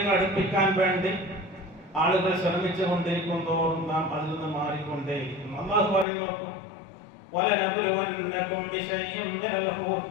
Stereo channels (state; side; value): drops out; right; at 6.1 s